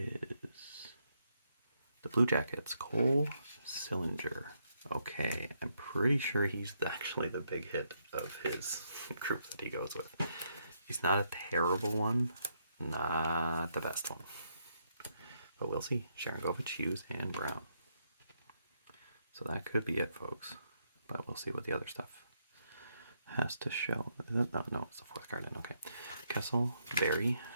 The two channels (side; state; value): both; inverted; correlation -0.77